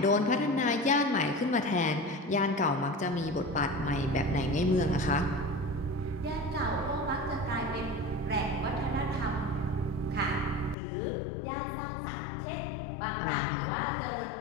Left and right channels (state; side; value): drops out; right; at 10.8 s